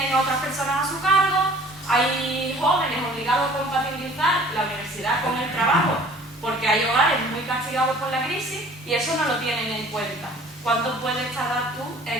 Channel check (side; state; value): both; normal; correlation 0.50